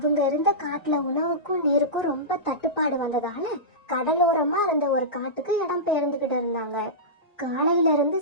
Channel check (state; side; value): late; right; 1.9 ms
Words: இருந்த காட்டுல உணவுக்கும் நீருக்கும் ரொம்ப தட்டுப்பாடு வந்ததால கடலோரமா இருந்த ஒரு காட்டுக்கு இடம் பெயர்ந்துகிட்டு இருந்தாங்க. காலையில இருந்து